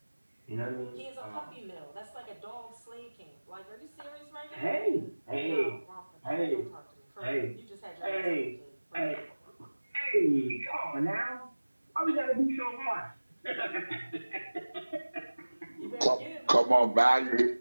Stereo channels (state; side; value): inverted; both; correlation -1.00